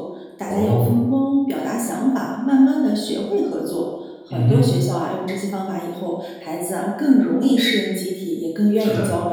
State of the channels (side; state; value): both; identical; correlation 1.00